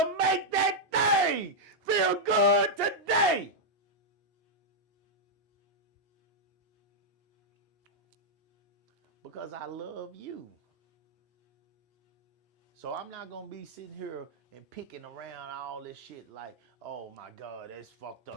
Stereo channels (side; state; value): both; normal; correlation -0.04